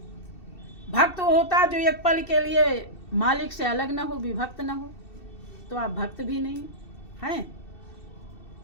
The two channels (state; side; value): late; right; 2.7 ms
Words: भक्त होता जो एक पल के लिए मालिक से अलग ना हो, विभक्त ना हो, तो आप भक्त भी नहीं हैं।